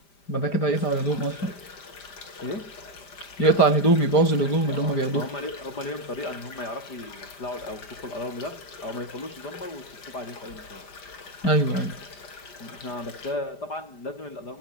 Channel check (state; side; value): late; right; 5.0 ms